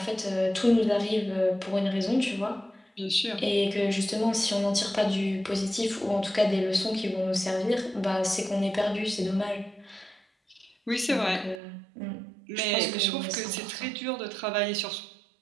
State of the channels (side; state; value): left; drops out; at 11.6 s